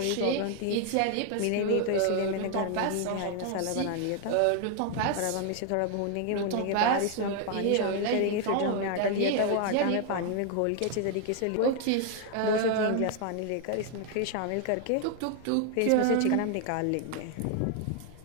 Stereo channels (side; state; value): both; different; correlation 0.00